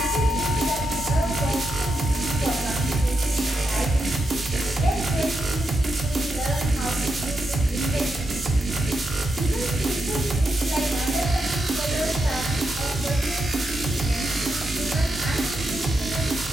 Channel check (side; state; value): both; normal; correlation 0.85